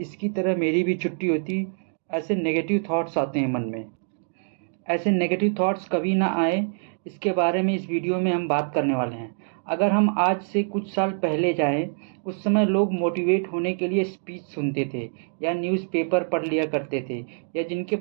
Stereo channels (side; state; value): left; silent; digital silence